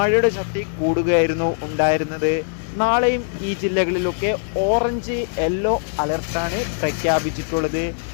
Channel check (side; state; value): right; silent; digital silence